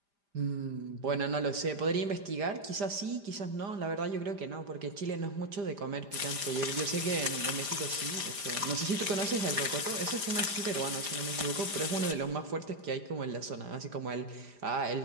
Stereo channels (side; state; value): left; late; 5.0 ms